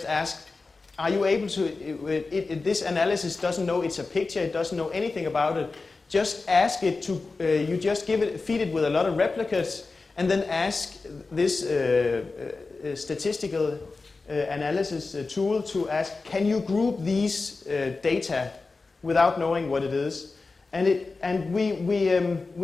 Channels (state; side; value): quieter; right; 3.9 dB